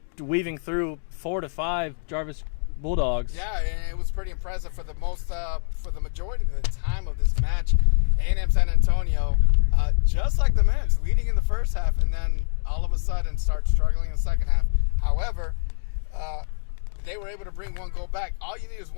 weaving through 4 to 5 Jarvis Bulldogs. Yeah, and it was pretty impressive for the majority of the time of this match. A&M San Antonio, just like the men's, leading in the first half, and then all of a sudden start struggling in the second half. However, they were able to bring 1 goal back. All you need is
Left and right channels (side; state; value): right; silent; digital silence